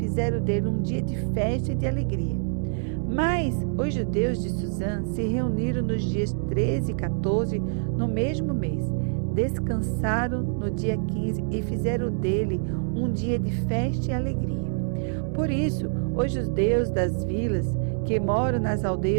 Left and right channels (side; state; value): left; silent; 61 dB below the other